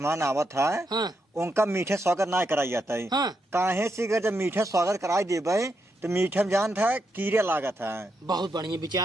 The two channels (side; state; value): both; normal; correlation 0.82